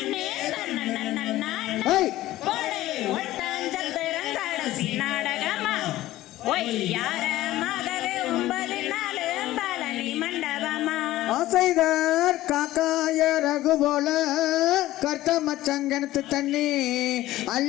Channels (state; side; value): quieter; right; 15.7 dB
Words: தன்னன்னா ஒய் போடே ஒட்டாஞ்சத்திரங்கடசி நாடகமா ஒய் யாராமகவே 9 நாளும் பழனி மண்டபமா ஆசைதார் காக்காய ரகு போல கர்த்த மச்சங்கனத்து தண்ணி